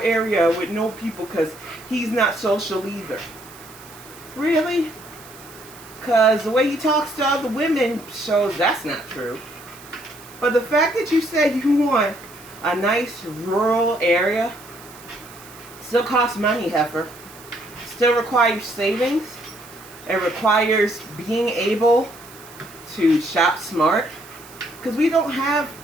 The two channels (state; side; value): noise; right; hiss, 20 dB below the sound